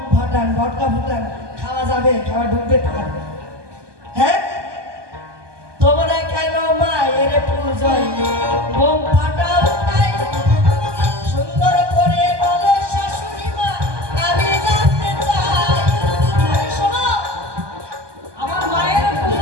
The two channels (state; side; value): late; left; 1.2 ms